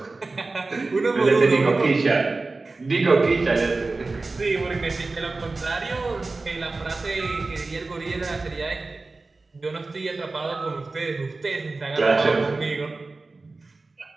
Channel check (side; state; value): left; quieter; 3.6 dB